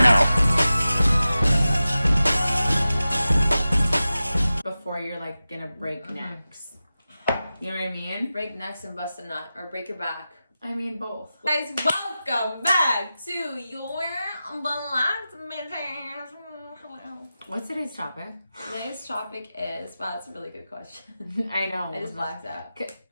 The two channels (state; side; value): inverted; both; correlation -0.94